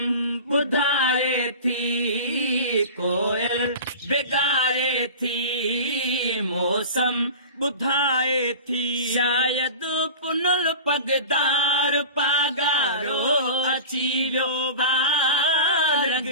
बुधाए थी कोयल बिगाए थी मौसम बुधाए थी शायद पुनल पगदार पागारो अची वियो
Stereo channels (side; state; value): both; inverted; correlation -0.34